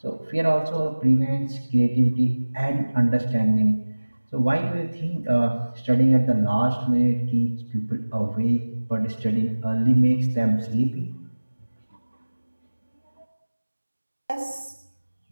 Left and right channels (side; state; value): both; inverted; correlation -1.00